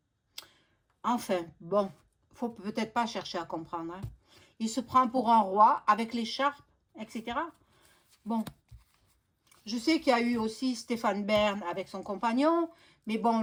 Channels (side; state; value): both; identical; correlation 1.00